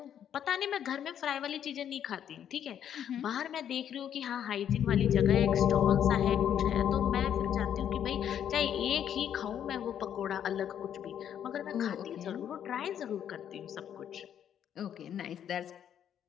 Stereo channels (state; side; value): quieter; right; 9.5 dB